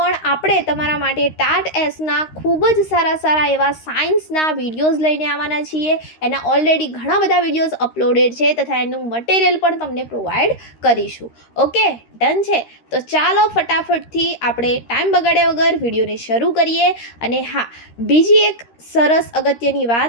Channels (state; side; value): late; right; 13 ms